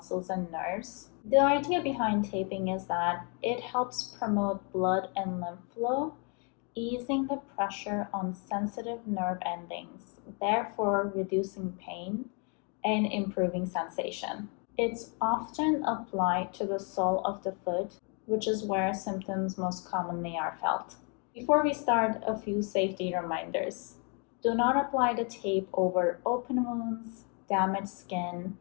and nerves. The idea behind taping is that it helps promote blood and lymph flow, easing the pressure on sensitive nerve endings, therefore reducing pain and improving sensation. It's often applied to the sole of the foot, which is where symptoms most commonly are felt. Before we start, a few safety reminders. Do not apply the tape over open wounds, damaged skin,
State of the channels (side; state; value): right; quieter; 36.2 dB